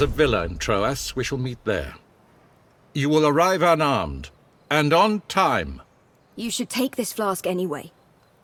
villa in Troas. We shall meet there. You will arrive unarmed, and on time. You should take this flask anyway.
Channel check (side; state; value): both; identical; correlation 1.00